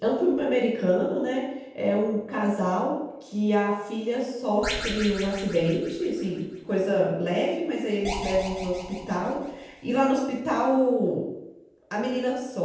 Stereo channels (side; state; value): both; identical; correlation 1.00